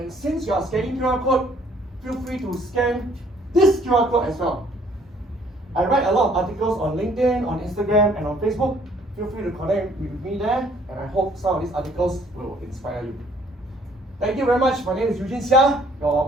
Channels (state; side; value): normal; both; correlation 0.61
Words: since you are scanning QR code, feel free to scan this QR code as well. I write a lot of articles on LinkedIn, on Instagram, and on Facebook. Feel free to connect with me there, and I hope some of these articles will inspire you. Thank you very much. My name is Eugene Seah, your